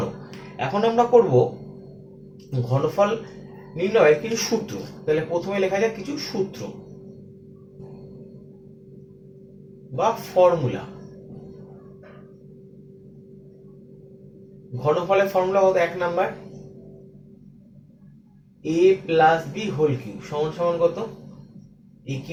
এখন আমরা করব ঘনফল নির্ণয়ের কিছু সূত্র। তাহলে প্রথমে লেখা যাক কিছু সূত্র বা ফর্মুলা। ঘনফলের ফর্মুলা কত? 1 number, a plus B whole cube সমান সমান কত? a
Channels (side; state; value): both; identical; correlation 1.00